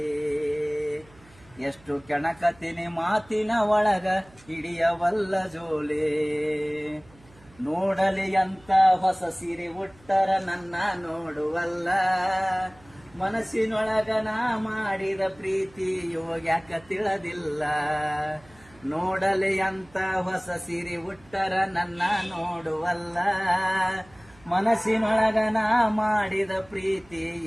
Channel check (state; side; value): noise; right; hum, 27 dB below the sound